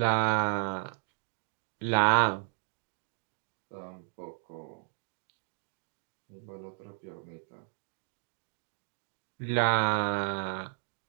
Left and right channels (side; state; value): left; silent; digital silence